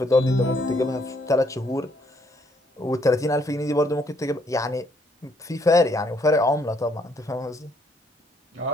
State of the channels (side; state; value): both; normal; correlation 0.69